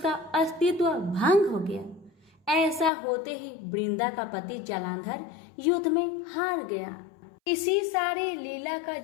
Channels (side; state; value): right; drops out; at 2.9 s